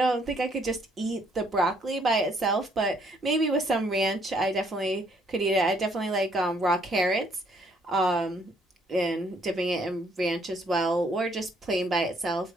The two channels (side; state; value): both; normal; correlation 0.67